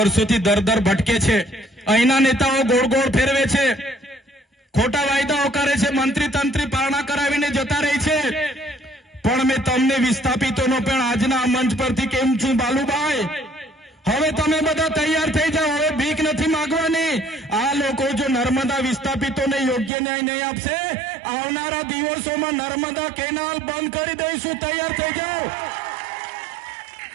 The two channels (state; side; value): drops out; left; at 19.9 s